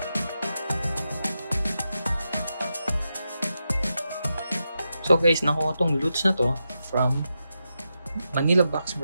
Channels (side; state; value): both; inverted; correlation -0.88